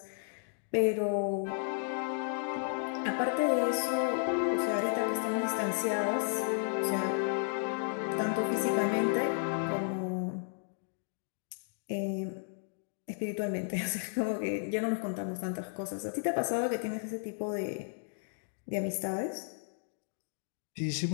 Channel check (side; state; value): right; silent; digital silence